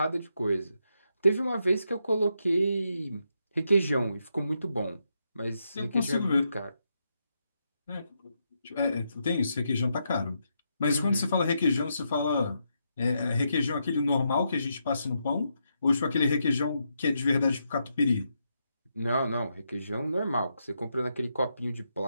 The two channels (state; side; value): inverted; both; correlation -0.82